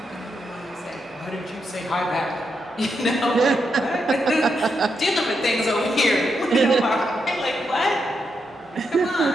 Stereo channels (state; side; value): normal; both; correlation 0.83